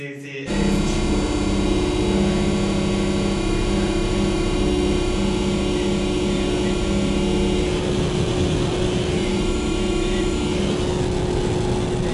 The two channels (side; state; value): both; identical; correlation 1.00